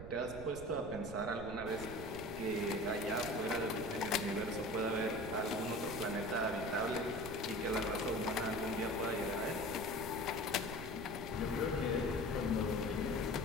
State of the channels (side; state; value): right; noise; rumble, 11 dB below the sound